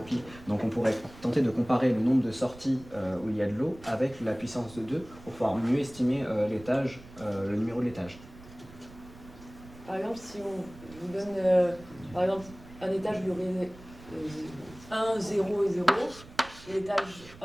Donc on pourrait tenter de comparer le nombre de sorties où il y a de l'eau avec la puissance de 2 pour pouvoir mieux estimer l'étage, le numéro de l'étage. Par exemple, si on vous donne par exemple, un étage où il y aurait 1, 0 et 0, et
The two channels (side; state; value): right; noise; rumble, 19 dB below the sound